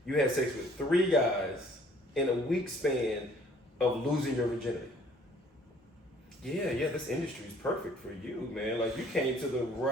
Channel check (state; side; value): normal; both; correlation 0.58